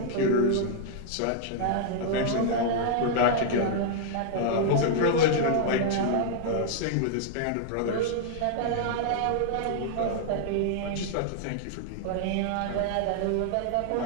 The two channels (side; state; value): both; different; correlation -0.01